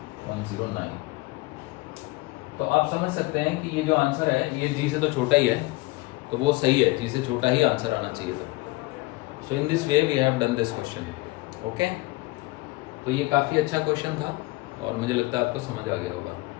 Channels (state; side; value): quieter; right; 22.2 dB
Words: तो आप समझ सकते हैं कि ये जो आंसर है ये g से तो छोटा ही है, तो वो सही है, g से छोटा ही आंसर आना चाहिए था. So in this way we have done this question. Okay, तो ये काफ़ी अच्छा क्वेश्चन था और मुझे लगता है आपको समझ आ गया होगा.